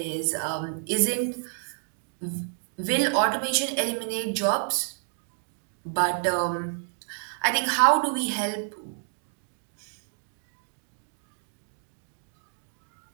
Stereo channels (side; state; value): left; silent; digital silence